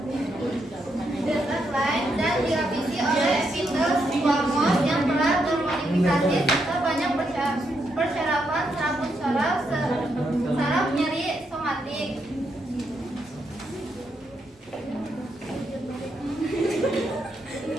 lain dan direvisi oleh epitel squamous yang telah termodifikasi serta banyak persyaratan saraf nyeri somatik.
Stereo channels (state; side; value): normal; both; correlation 0.80